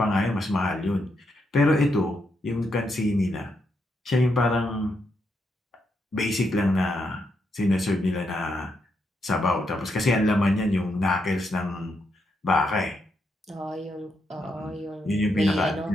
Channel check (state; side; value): normal; both; correlation 0.81